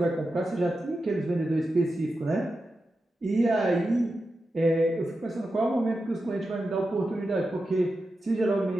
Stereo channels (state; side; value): normal; both; correlation 0.90